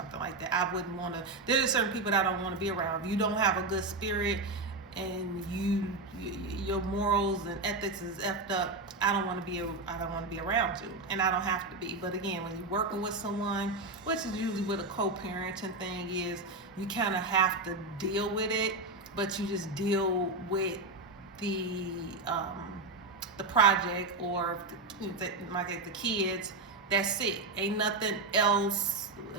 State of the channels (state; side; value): quieter; left; 3.2 dB